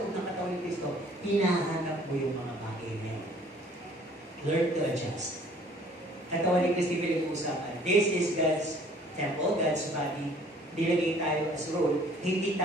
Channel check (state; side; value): normal; both; correlation 0.55